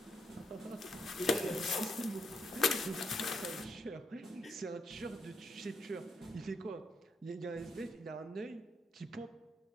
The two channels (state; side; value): normal; both; correlation 0.77